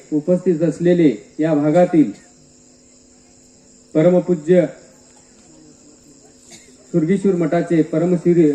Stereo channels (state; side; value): identical; both; correlation 1.00